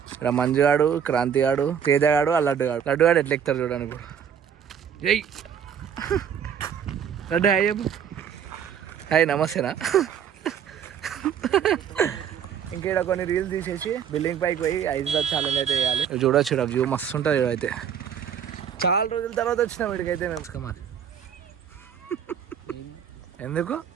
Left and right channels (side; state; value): left; quieter; 8.3 dB